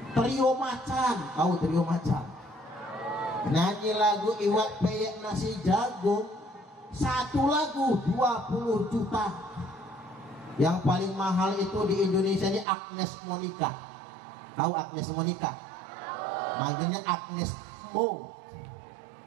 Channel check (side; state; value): left; drops out; at 12.7 s